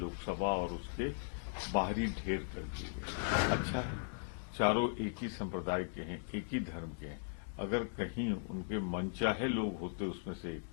और उसके बाहरी ढेर कर दिए गए। अच्छा है, चारों एक ही संप्रदाय के हैं, एक ही धर्म के हैं। अगर कहीं उनके मनचाहे लोग होते उसमें से एक,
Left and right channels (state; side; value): silent; right; digital silence